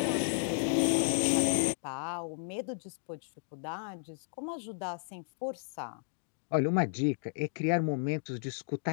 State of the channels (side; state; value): right; silent; digital silence